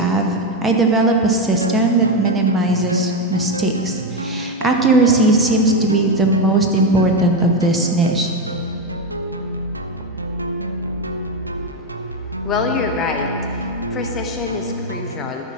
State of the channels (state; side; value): normal; both; correlation 0.09